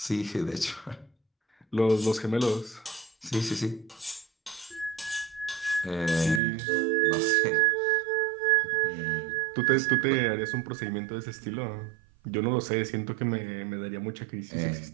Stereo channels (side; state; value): left; drops out; at 6.4 s